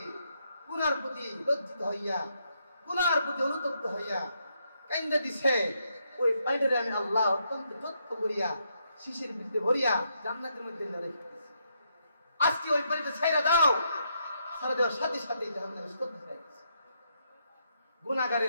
গুনার প্রতি লজ্জিত হইয়া, গুনার প্রতি অনুতপ্ত হইয়া কাইন্দা দিছে, ওই পানিটারে আমি আল্লাহ অত্যন্ত যত্ন করিয়া শিশির ভিতরে ভরিয়া জান্নাতের মধ্যে রেখে দিয়েছি। আজকে ওই পানিটা ছাইরা দাও, ছাড়া দেওয়ার সাথে সাথে জাহান্নামে স্তব্ধ হয়ে গেছে।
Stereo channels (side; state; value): both; inverted; correlation -0.78